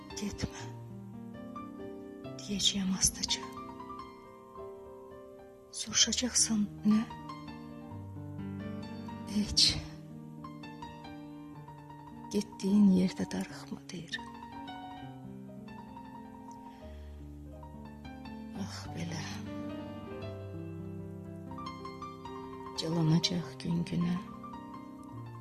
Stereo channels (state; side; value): identical; both; correlation 1.00